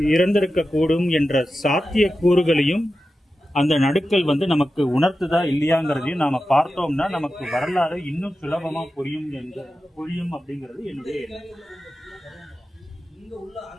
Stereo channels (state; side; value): normal; both; correlation 0.92